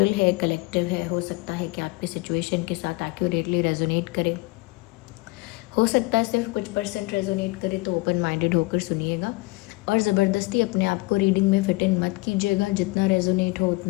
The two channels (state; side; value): quieter; right; 24.3 dB